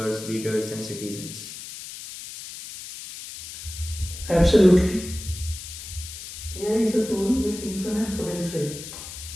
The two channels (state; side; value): noise; left; hiss, 11 dB below the sound